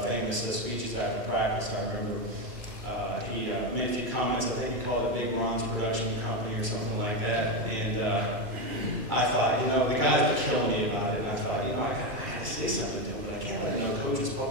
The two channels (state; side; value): late; left; 2.3 ms